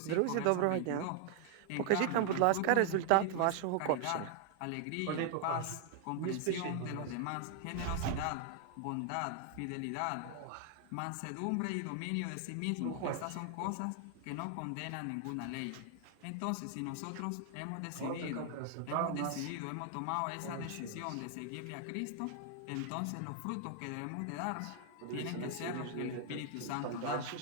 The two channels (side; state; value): both; different; correlation 0.00